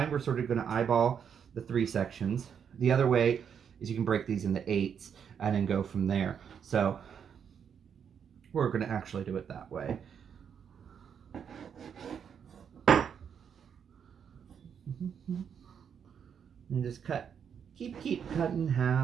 we're sort of gonna eyeball the 3 sections. The other way is you can break these into 8s and then go from there. So we're gonna actually do it that way. And just cut, keep cutting in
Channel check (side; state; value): left; quieter; 7.6 dB